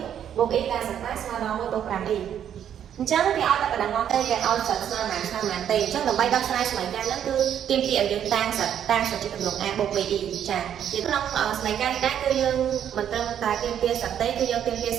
1បូក e ការសិក្សាស្មើដល់1បូក 5e អញ្ចឹងគេឲ្យតែបដងមកទេគេឲ្យសិតស្មើប៉ុន្មានទេអញ្ចឹងដើម្បីដោះស្រាយសមីការហ្នឹងគឺទាមទារឲ្យយើងតាំងសិតជាទម្រង់ a បូក be ចាក្នុងសមីការនេះដែរគឺយើងមិនត្រឹមតែទាមទារសិតទេគឺយើងទាមទារ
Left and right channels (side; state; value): left; quieter; 9.5 dB